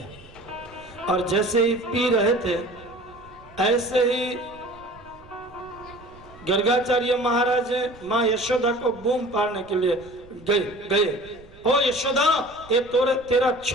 और जैसे ही पी रहे थे ऐसे ही गर्गाचार्य महाराज माँ यशोदा को बूम पाड़ने के लिए गए। ओ यशोदा, ये तेरा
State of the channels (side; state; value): right; noise; rumble, 23 dB below the sound